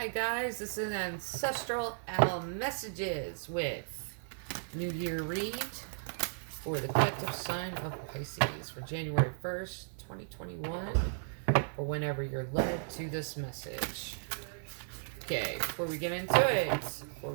guys, this is Ancestral Owl Messages with New Year read for the collective sign of Pisces for January 1st, 2021, or whenever you're led to this message. Okay, before we get into it, before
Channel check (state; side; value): silent; left; 54 dB below the other